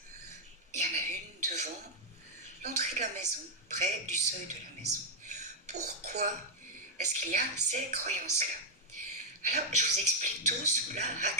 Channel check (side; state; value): both; normal; correlation 0.00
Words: Il y en a une devant l'entrée de la maison, près du seuil de la maison. pourquoi est-ce qu'il y a ces croyances-là? Alors, je vous explique tout sous la